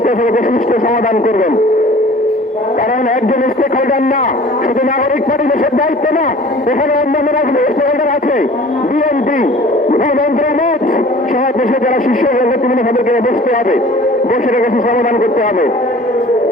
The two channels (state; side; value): normal; both; correlation 0.46